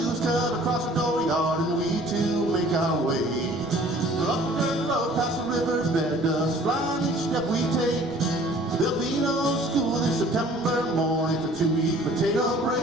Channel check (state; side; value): noise; right; rumble, 23 dB below the sound